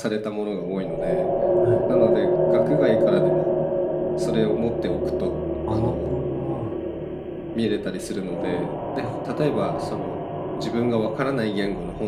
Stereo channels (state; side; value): identical; both; correlation 1.00